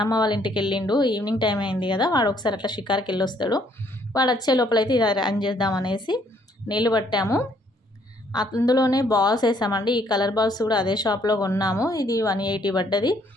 వాళ్ళ ఇంటికి వెళ్ళిండు. ఈవినింగ్ టైం అయింది కదా, వాడు ఒకసారి అట్లా షికార్కి వెళ్ళొస్తాడు. వాడు వచ్చే లోపలైతే ఇది రన్ చేద్దామనేసి నీళ్ళు పట్టాము. అందులోనే బాల్స్ వేసామండి. ఈ కలర్ బాల్స్ కూడా అదే షాప్లో కొన్నాము. ఇది 180 పడ్డది.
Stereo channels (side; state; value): both; normal; correlation 0.67